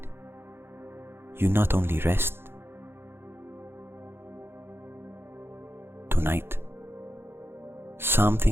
you not only rest. Tonight,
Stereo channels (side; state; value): left; late; 0.11 ms